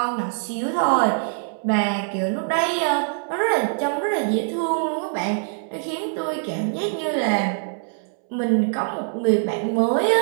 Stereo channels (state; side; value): silent; left; 63 dB below the other